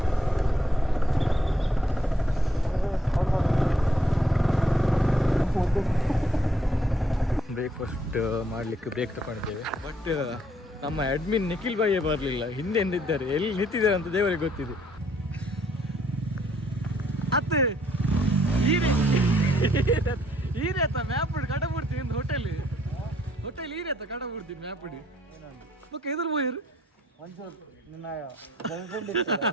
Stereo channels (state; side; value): normal; both; correlation 0.68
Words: ಬ್ರೇಕ್ಫಾಸ್ಟ್ ಮಾಡಲಿಕ್ಕೆ ಬ್ರೇಕ್ ತಗೊಂಡಿದ್ದೇವೆ. ಬಟ್ ನಮ್ಮ ಅಡ್ಮಿನ್ ನಿಖಿಲ್ ಬಾಯೇ ಬರಲಿಲ್ಲ. ಹಿಂದೆ ಎಂದಿದ್ದಾರೆ, ಎಲ್ಲಿ ನಿಂತಿದ್ದಾರೆ ಅಂತ ದೇವರಿಗೆ ಗೊತ್ತಿದೆ. ಅತ್ತೆ ಈರೇತ ಮ್ಯಾಪ್ ಕಡಬುಡ್ತಿ ಒಂದು ಹೋಟೆಲ್ ಈರೇತ ಕಡಬುಡ್ತಿ ಮ್ಯಾಪ್ ಓಕೆ ಎದುರು ಹೋಯ್ರು